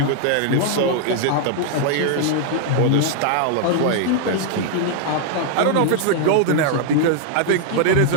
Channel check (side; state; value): both; different; correlation -0.01